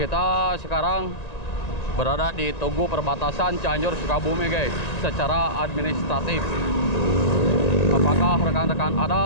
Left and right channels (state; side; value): late; right; 1.9 ms